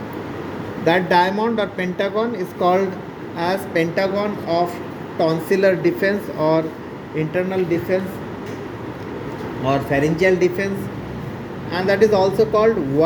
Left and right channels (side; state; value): both; identical; correlation 1.00